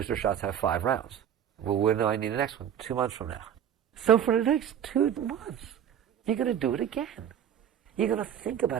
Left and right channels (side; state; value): left; quieter; 9.3 dB